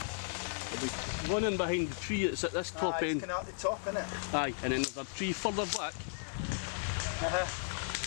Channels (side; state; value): right; silent; digital silence